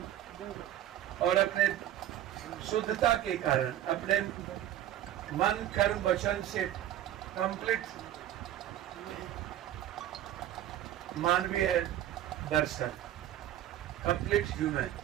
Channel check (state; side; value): quieter; left; 12.2 dB